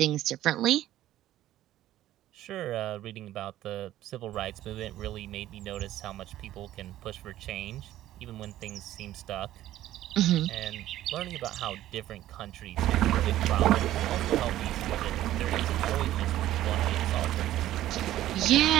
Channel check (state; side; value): quieter; left; 13.8 dB